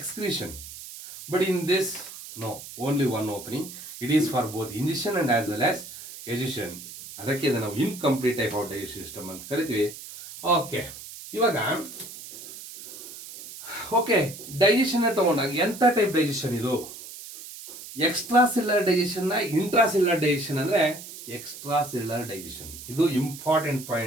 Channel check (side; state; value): right; noise; hiss, 13 dB below the sound